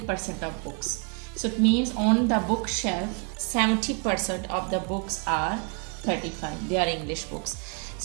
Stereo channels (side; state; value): left; quieter; 37.5 dB